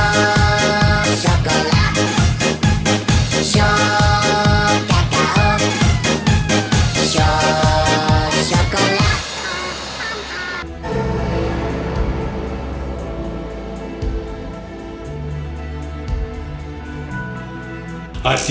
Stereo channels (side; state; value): both; identical; correlation 1.00